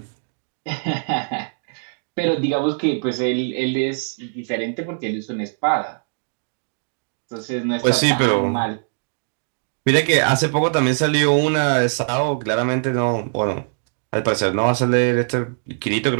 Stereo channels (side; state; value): left; silent; digital silence